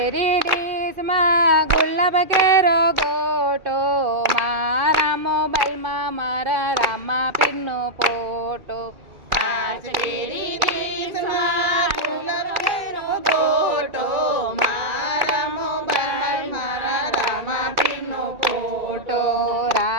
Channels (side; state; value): left; late; 2.4 ms